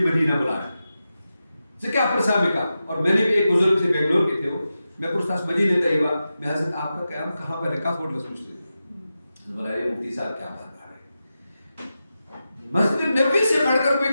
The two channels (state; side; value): inverted; both; correlation -0.91